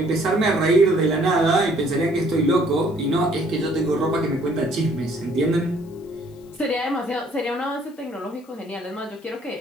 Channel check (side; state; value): left; noise; hiss, 30 dB below the sound